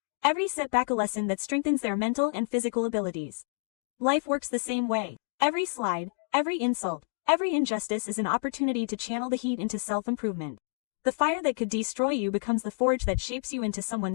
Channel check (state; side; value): silent; right; digital silence